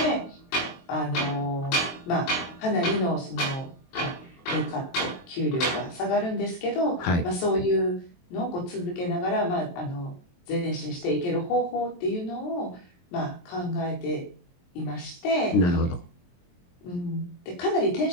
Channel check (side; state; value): right; late; 23 ms